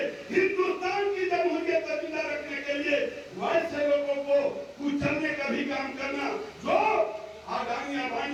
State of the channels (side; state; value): both; identical; correlation 1.00